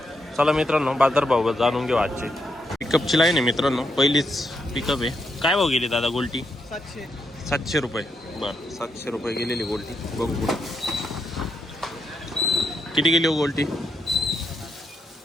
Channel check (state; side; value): normal; both; correlation 0.81